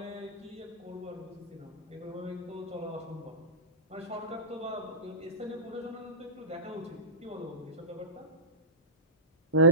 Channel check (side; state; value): both; normal; correlation -0.18